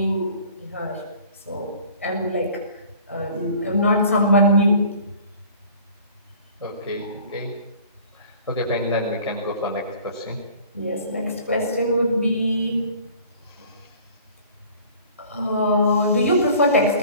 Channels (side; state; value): both; inverted; correlation -0.49